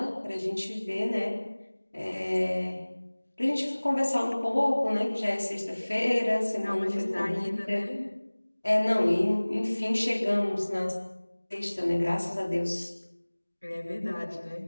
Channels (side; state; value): both; inverted; correlation -1.00